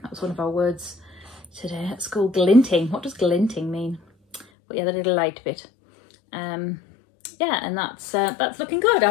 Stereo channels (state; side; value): drops out; right; at 4.5 s